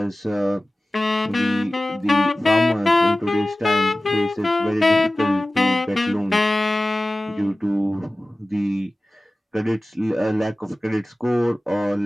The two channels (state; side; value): normal; both; correlation 0.97